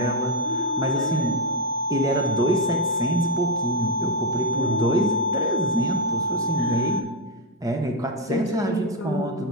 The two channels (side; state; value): both; normal; correlation 0.03